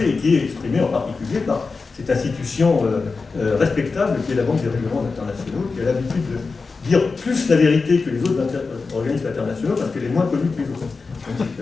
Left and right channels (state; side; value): quieter; right; 4.3 dB